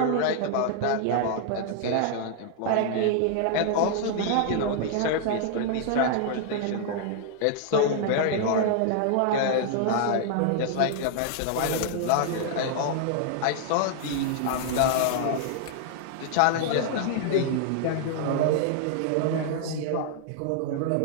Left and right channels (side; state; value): both; different; correlation 0.00